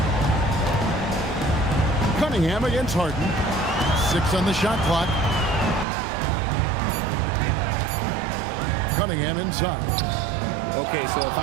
Cunningham against Harden. 6 on the shot clock. Cunningham inside. Okay, so if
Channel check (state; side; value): drops out; left; at 5.9 s